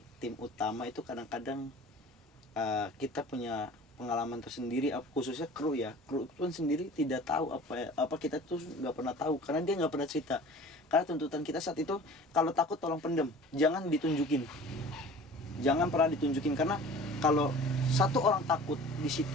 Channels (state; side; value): normal; both; correlation 0.43